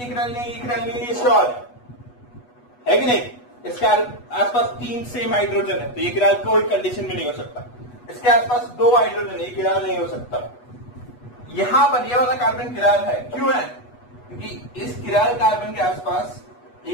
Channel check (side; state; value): right; late; 8.2 ms